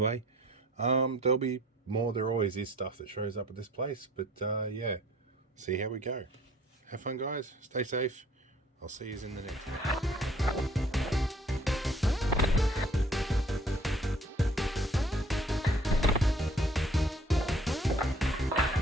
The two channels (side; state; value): both; normal; correlation 0.55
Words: there'll be more. There always is stuff that shows up at this place, but yeah, see how we go. Have fun, guys. Stay safe. I'll see you in the next one.